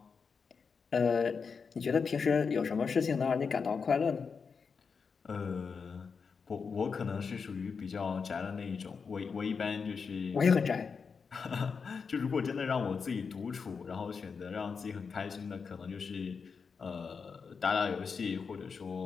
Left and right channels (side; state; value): right; quieter; 5.5 dB